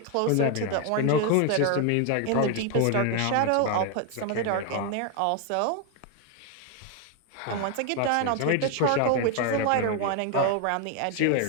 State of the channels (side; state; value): both; different; correlation 0.01